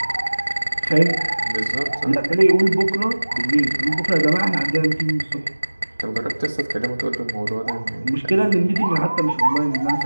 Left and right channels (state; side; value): inverted; both; correlation -1.00